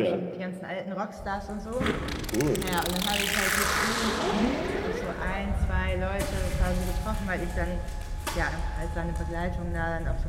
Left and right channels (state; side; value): identical; both; correlation 1.00